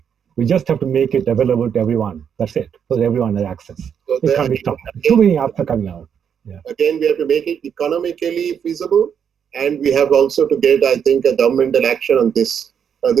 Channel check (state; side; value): quieter; left; 7.8 dB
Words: We just have to make it available to everyone. That's it. So that everyone has access. So it can't be stopped. Too many apps are coming out. Yeah. Again, we have to make it economically feasible. And we have also to get, I think, a governmental action on this.